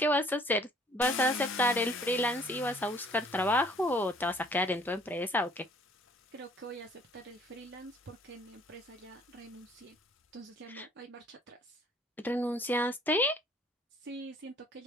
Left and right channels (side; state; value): both; normal; correlation 0.58